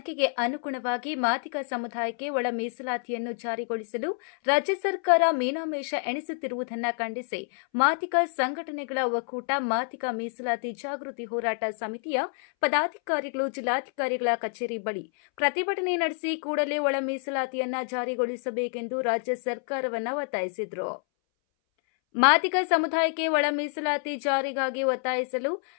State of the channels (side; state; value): right; silent; 59 dB below the other